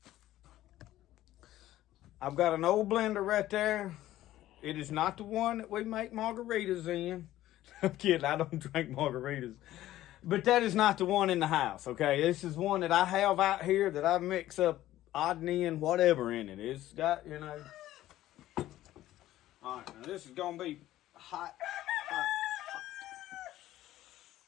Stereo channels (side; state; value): right; quieter; 14.4 dB